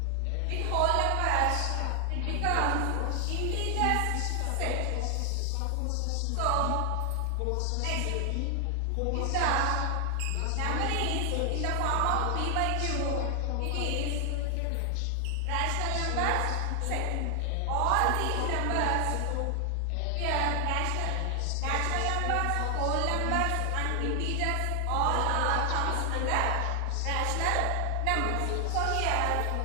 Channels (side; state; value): both; different; correlation 0.00